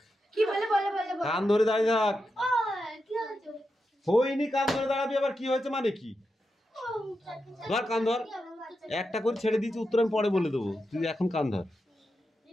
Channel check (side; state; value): both; normal; correlation 0.88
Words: কান ধরে দাঁড়িয়ে থাক। হয়নি, কান ধরে দাঁড়াবি। আবার কি হয়েছে মানে কি? ধর কান ধর। একটা করে ছেড়ে দিয়েছি, উত্তর আমি পরে বলে দেবো, তুই এখন কান ধর।